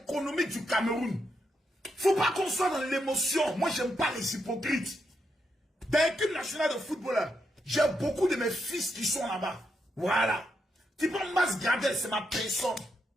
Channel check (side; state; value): both; normal; correlation 0.82